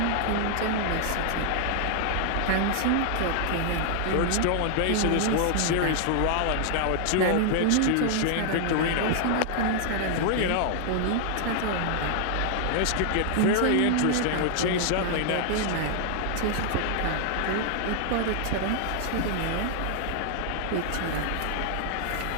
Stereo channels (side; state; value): both; different; correlation 0.00